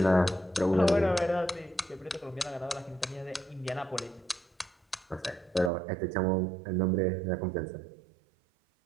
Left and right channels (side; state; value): left; drops out; at 5.7 s